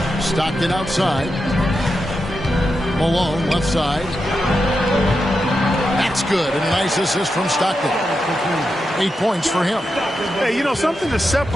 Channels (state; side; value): normal; both; correlation 0.87